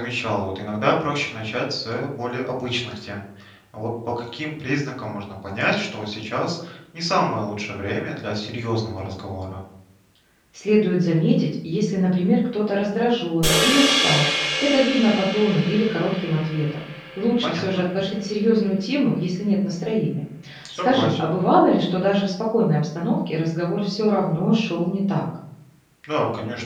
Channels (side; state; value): both; identical; correlation 1.00